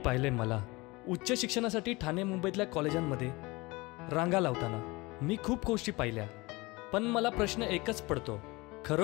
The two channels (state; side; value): quieter; right; 23.2 dB